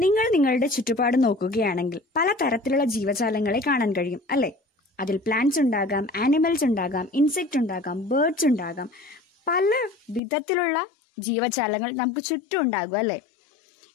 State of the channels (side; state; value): right; drops out; at 10.2 s